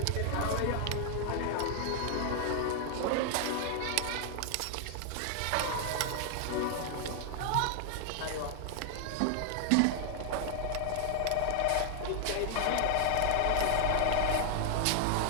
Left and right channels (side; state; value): both; different; correlation 0.00